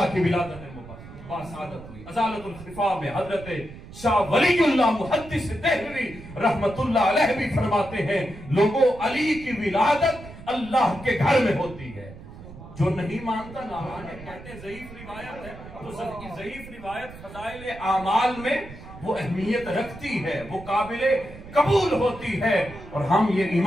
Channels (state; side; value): noise; right; rumble, 16 dB below the sound